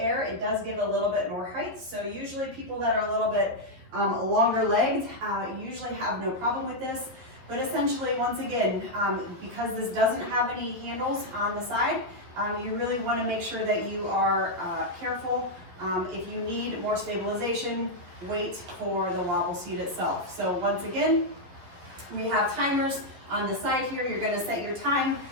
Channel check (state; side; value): late; left; 12 ms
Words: it does give a little bit more height. So usually people that are a little bit longer legged usually have no problem with this. But essentially, once again, because this doesn't have any handles on the side, you really want to make sure that you are careful. If you need more stabilization, wait for the wobble seat itself. So once again, we have timers on the side here. You're going to set your time,